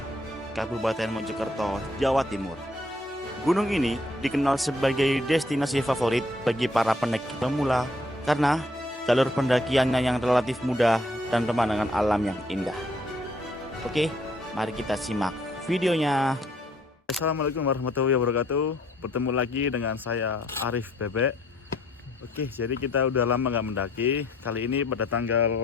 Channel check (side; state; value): both; normal; correlation 0.65